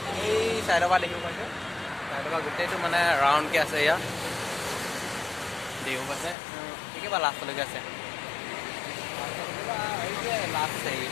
এই সাইডৰ পৰা দেখিব পাইছে সাইডৰ পৰা গোটেইটো মানে ৰাউণ্ড কে আছে এয়া দেখিব পাইছে একেবাৰে লাষ্টলৈকে আছে लास्ट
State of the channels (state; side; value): drops out; right; at 6.4 s